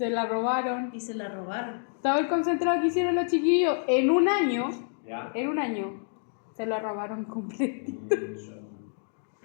la robaron. Y se la robaron. Todo el concentrado que hicieron los chiquillos en un año, ¿Ya? se lo robaron completo.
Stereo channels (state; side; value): silent; right; digital silence